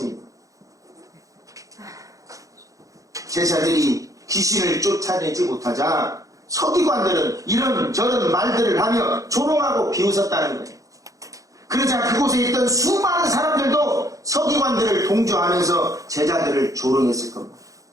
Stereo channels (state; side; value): late; left; 0.16 ms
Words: 제자들이 귀신을 쫓아내지 못하자 서기관들은 이런저런 말들을 하며 조롱하고 비웃었다는 거예요. 그러자 그곳에 있던 수많은 사람들도 서기관들을 동조하면서 제자들을 조롱했을 겁니다.